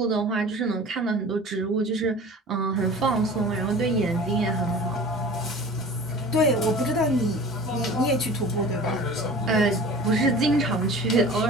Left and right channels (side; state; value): both; normal; correlation 0.41